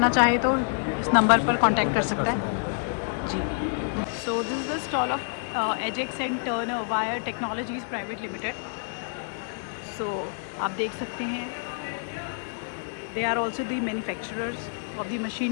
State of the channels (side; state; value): right; silent; digital silence